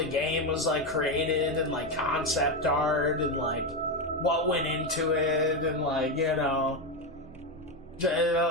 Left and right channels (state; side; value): normal; both; correlation 0.11